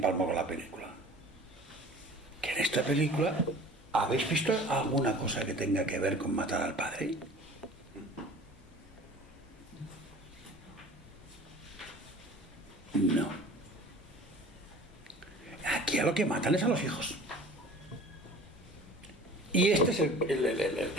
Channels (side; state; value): both; normal; correlation 0.44